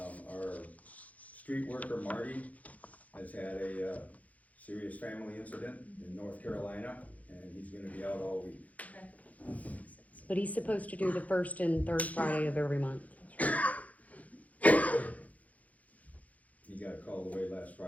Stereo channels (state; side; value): late; right; 0.072 ms